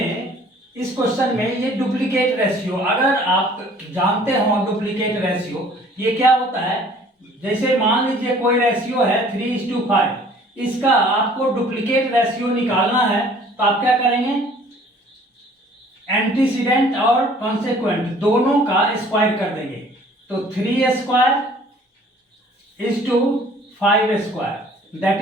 इस क्वेश्चन में ये डुप्लीकेट रेशियो, अगर आप जानते हो डुप्लीकेट रेशियो ये क्या होता है, जैसे मान लीजिए कोई रेशियो है 3:5, इसका आपको डुप्लीकेट रेशियो निकालना है तो आप क्या करेंगे, एंटीसीडेंट और कॉन्सेक्वेंट दोनों का स्क्वायर कर देंगे। तो 3² दैट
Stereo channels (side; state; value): both; normal; correlation 0.53